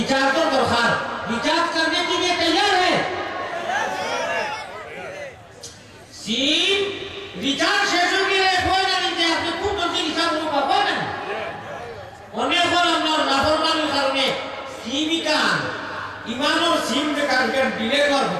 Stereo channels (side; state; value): both; identical; correlation 1.00